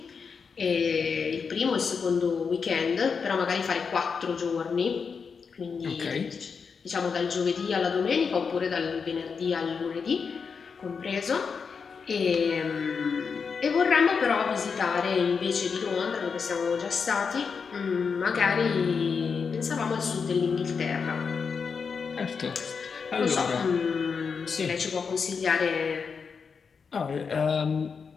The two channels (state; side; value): quieter; right; 5.7 dB